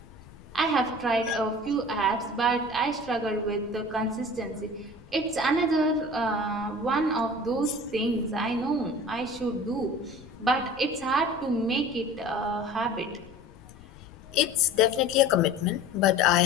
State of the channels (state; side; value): noise; left; rumble, 21 dB below the sound